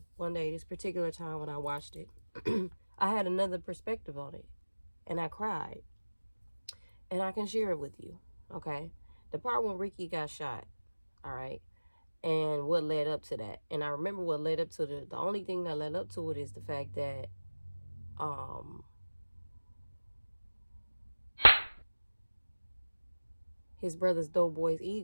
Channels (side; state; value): both; inverted; correlation -1.00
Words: one day, this particular time when I watched it, I had another perspective on it, and I cried, and I can share it with you, okay? The part when Ricky got shot, all right, and what led up to that. And I remember what led up to the only thing that led up to it is the fact that, his brother's doughboy's